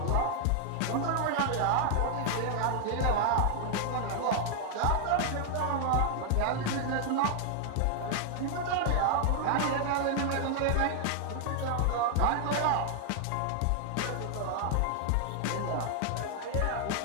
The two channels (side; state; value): both; different; correlation 0.00